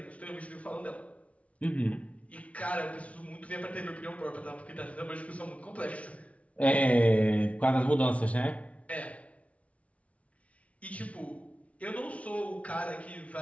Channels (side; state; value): right; late; 0.065 ms